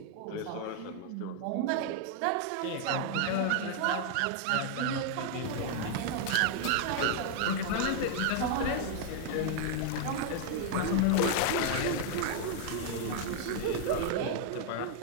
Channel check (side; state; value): both; different; correlation 0.00